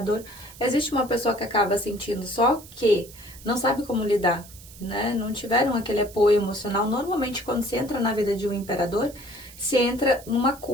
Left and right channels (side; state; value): right; noise; hiss, 19 dB below the sound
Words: existe uma pessoa que acaba sentindo, só que não sabe como lidar, né, não tiveram aquele apoio emocional. Normalmente, quando se entra na vida de um imperador, se entra numa